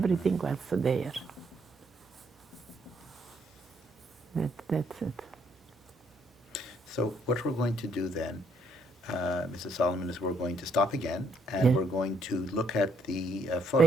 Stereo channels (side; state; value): both; normal; correlation 0.69